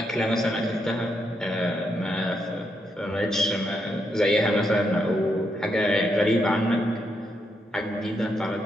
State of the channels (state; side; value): normal; both; correlation 0.80